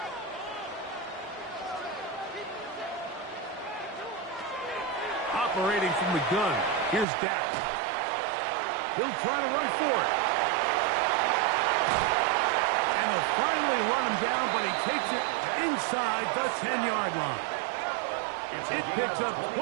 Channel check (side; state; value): left; drops out; at 7.1 s